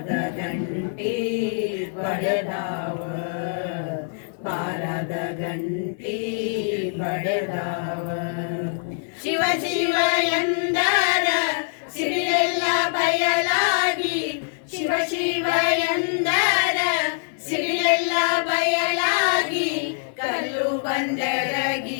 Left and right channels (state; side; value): silent; right; digital silence